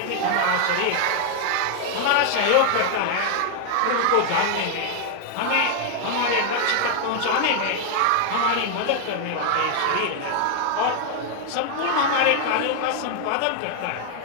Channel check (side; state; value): both; different; correlation 0.00